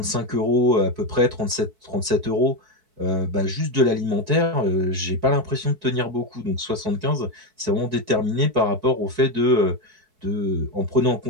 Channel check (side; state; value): left; late; 4.6 ms